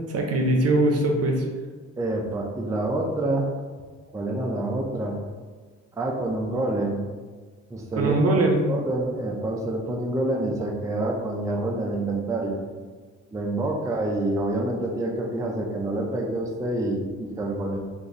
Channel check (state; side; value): normal; both; correlation 0.52